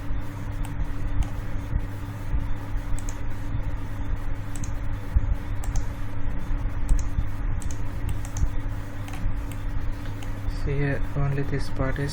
See here only this part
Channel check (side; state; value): both; identical; correlation 1.00